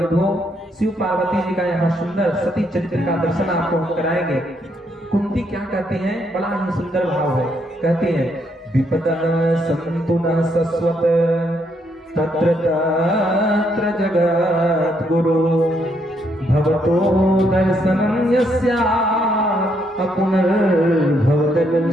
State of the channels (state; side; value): normal; both; correlation 0.74